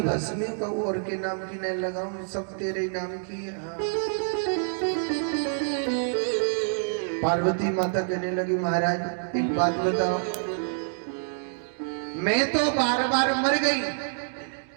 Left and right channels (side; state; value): left; silent; digital silence